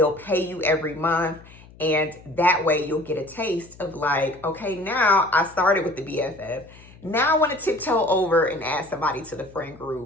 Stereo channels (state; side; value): noise; left; hum, 23 dB below the sound